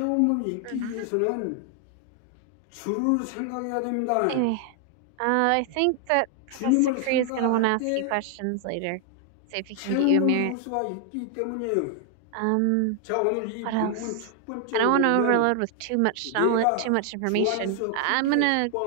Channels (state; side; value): different; both; correlation 0.00